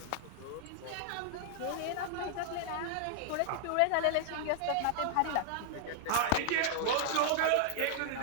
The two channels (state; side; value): different; both; correlation -0.01